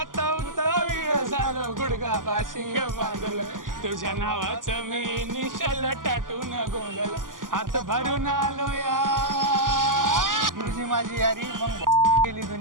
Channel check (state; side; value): late; left; 0.89 ms